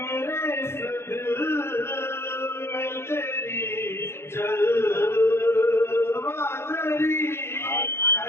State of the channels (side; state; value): right; late; 0.12 ms